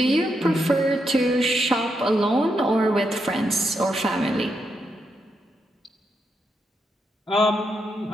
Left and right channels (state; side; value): normal; both; correlation 0.82